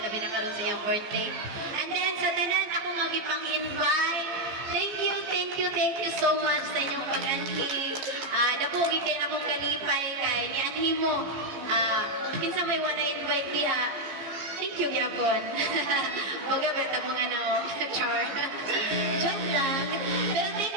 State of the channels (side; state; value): left; late; 15 ms